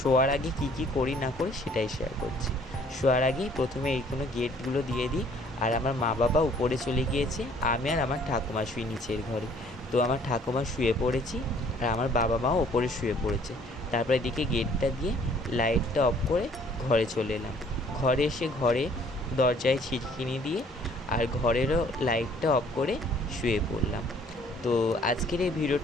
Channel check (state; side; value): normal; both; correlation 0.58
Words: আগে কি কি করি না করি সেটাই শেয়ার করছি। শোয়ার আগে প্রথমে এইগুলো গেটগুলো দিয়ে দিই। আর আমার মা বাবা উপরে চলে গিয়েছে, আমি আর আমার ঠাকুমা শুই নিচের ঘরে। তো আমার ঠাকুমা শুয়ে পড়েছি, আর আমার বাবা মাও ওপরে শুয়ে পড়েছে। তারপর এদিকে গেটটা দিয়ে লাইটটা অফ করে ঘরে চলে এলাম। ঘরে এসে ঘরে দরজায় ছিটকিনি দিয়ে আর ঘরেরও লাইটটা অফ করে শুয়ে পড়লাম। তো আজকের এই